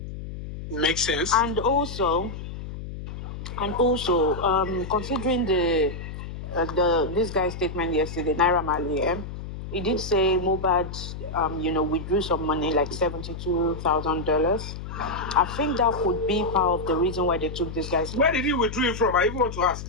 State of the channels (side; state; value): left; noise; hum, 9 dB below the sound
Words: Makes sense. And also, considering this guy's statement yesterday, Naira Marley, he did say Mohbad, withdrew some money, like $72,000. I think that could be part of the reason why they took this guy's. Where did he withdraw it from? I even want to